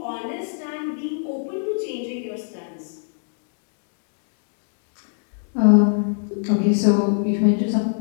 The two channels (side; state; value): right; silent; digital silence